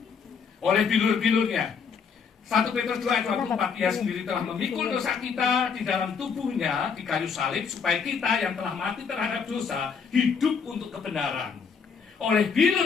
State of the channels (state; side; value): quieter; right; 6.1 dB